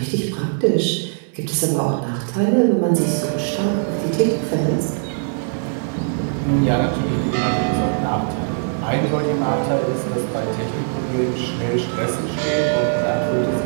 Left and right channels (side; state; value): left; silent; 61 dB below the other